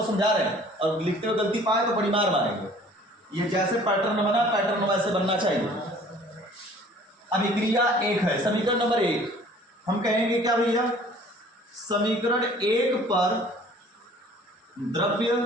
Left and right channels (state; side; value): normal; both; correlation 0.52